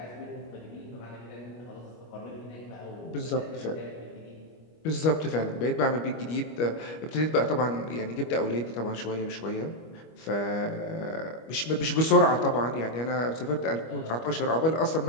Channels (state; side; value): late; right; 25 ms